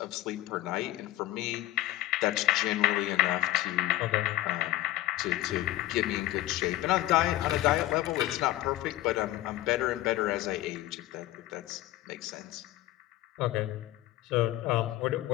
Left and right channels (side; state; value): right; quieter; 15.8 dB